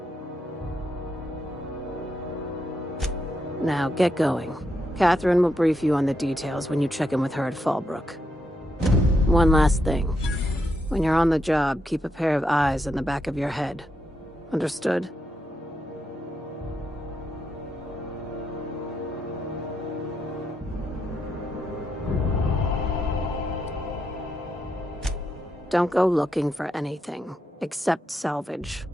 Now, get going. Catherine will brief you on the details when you check in with her at Fallbrook. One last thing. When you're on the job, keep a pair of eyes in the back of your head. Understood? Don't go looking for anything, except salvage.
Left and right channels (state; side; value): normal; both; correlation 0.81